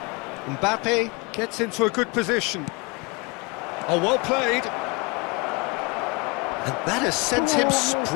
Mbappe gets into a good position. Oh, well played. And that has sent him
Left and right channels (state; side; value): quieter; right; 28.0 dB